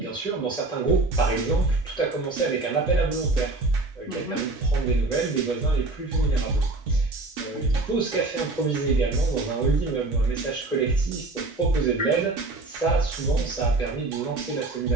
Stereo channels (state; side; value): quieter; left; 3.2 dB